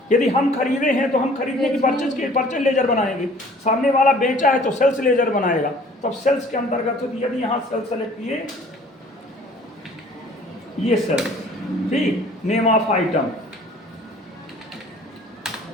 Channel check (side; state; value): both; normal; correlation 0.52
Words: यदि हम खरीदे हैं तो हम खरीदने की परचेज लेजर बनाएंगे, सामने वाला बेचा है तो सेल्स लेजर बनाएगा। तब सेल्स के अंतर्गत यदि यहाँ सेल्स सेलेक्ट किए, ये सेल्स, ठीक, name of item